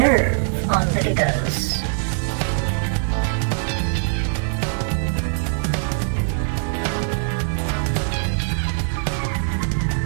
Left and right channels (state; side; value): silent; left; digital silence